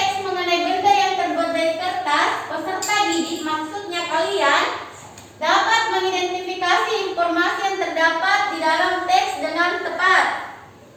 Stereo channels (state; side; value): identical; both; correlation 1.00